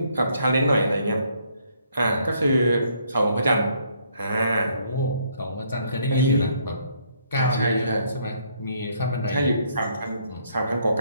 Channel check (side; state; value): both; inverted; correlation -0.68